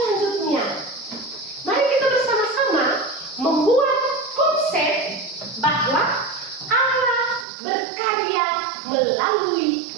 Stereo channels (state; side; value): drops out; left; at 7.5 s